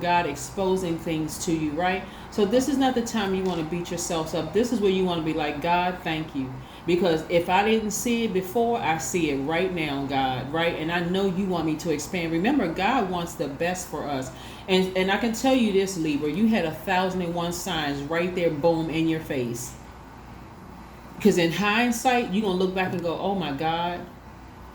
exposing things to you, right? So this is not the time you want to beat yourselves up. This is where you want to be like, God, thank you. Because if I didn't see it before, I see it right now, God, right? And I know you want me to expand. Remember, God wants the best for us. And I can tell you this, Libra, you had 1,001 signs right there, boom, in your face. Because in hindsight, you're going to look back and go, oh my God,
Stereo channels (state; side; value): identical; both; correlation 1.00